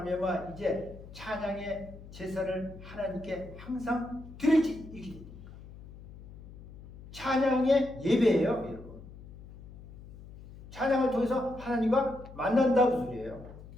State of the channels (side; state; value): left; noise; hum, 16 dB below the sound